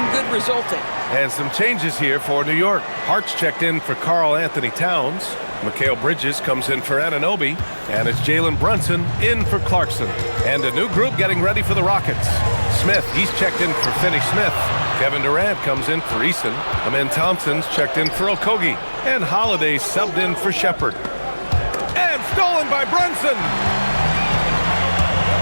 good resulting. And some changes here for New York. Hart's checked in for Karl Anthony Towns. Mikal Bridges comes in for Anunoby, and it's Jalen Brunson in for Clarkson. And a new group getting ready for the Rockets. Smith, he's checked in for Finney-Smith. Kevin Durant comes in for Eason. Amen Thompson's checked in for Okogie. And Holiday subbed in for Shepard. And stolen by Brunson!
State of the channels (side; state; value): both; inverted; correlation -1.00